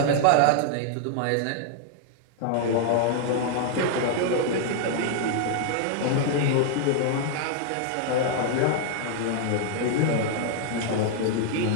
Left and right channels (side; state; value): both; different; correlation 0.00